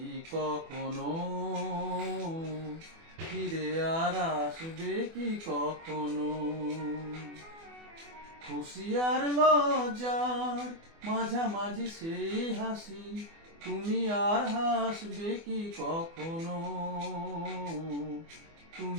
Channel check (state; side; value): late; left; 24 ms